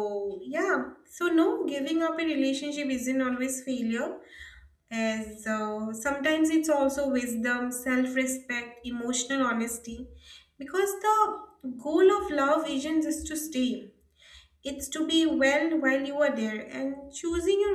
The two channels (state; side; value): identical; both; correlation 1.00